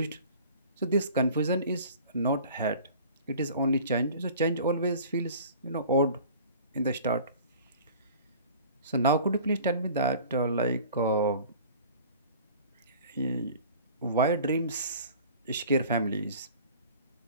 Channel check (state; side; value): inverted; both; correlation -0.45